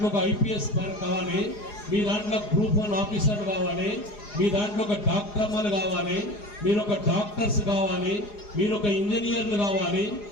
ఒక IPS కావాలి, మీ దాంట్లో గ్రూప్ 1 ఆఫీసర్ కావాలి, మీ దాంట్లో ఒక డాక్టర్లు కావాలి, మీరు ఒక డాక్టర్స్ కావాలి, మీరు ఒక ఇంజనీర్లు కావాలి.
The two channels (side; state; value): right; late; 4.8 ms